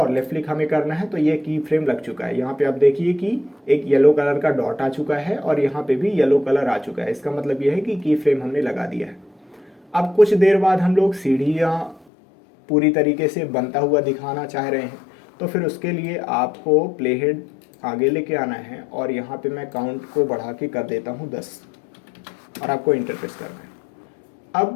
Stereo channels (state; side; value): drops out; right; at 12.1 s